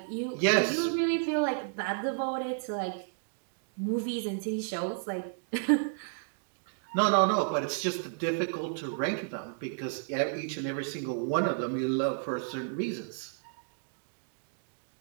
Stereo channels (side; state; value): left; silent; digital silence